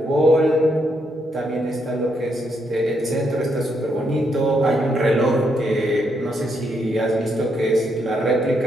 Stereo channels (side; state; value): both; normal; correlation 0.77